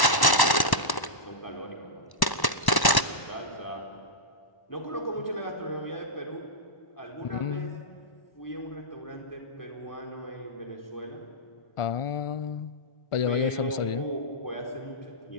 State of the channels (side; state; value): right; late; 1.1 ms